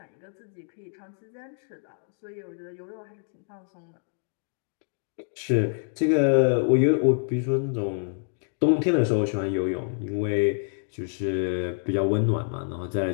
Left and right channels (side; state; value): right; silent; digital silence